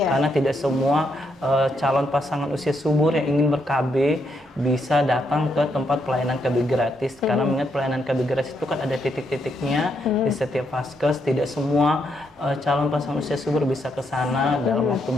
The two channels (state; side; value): normal; both; correlation 0.78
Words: tidak semua calon pasangan usia subur yang ingin ber-KB bisa datang ke tempat pelayanan KB gratis, karena mengingat pelayanan KB gratis itu kan ada titik-titiknya di setiap Paskes. Tidak semua calon pasangan usia subur bisa ke sana dalam waktu